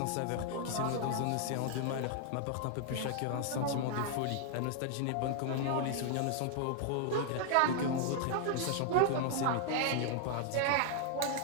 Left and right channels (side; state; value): both; different; correlation 0.00